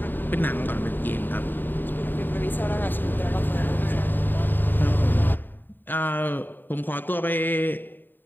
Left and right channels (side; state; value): right; late; 0.092 ms